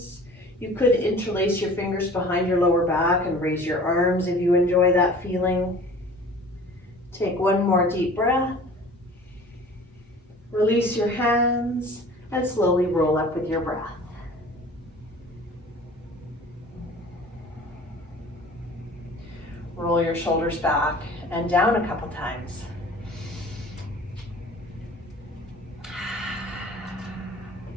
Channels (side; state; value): both; normal; correlation 0.45